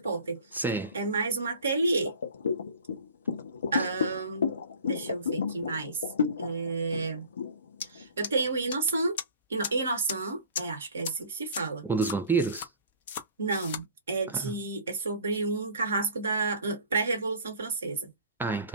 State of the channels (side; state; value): both; inverted; correlation -0.44